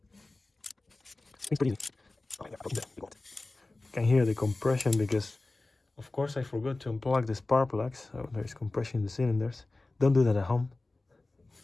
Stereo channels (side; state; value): right; quieter; 3.1 dB